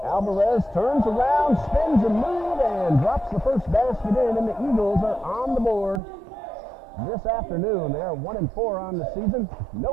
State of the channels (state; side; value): drops out; left; at 6.0 s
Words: Alvarez turns around, spins a move, and drops the first basket in, and the Eagles are on the board this afternoon. They are 1-4 on the season.